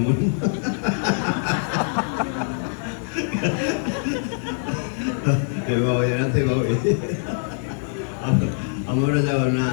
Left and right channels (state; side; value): silent; right; 63 dB below the other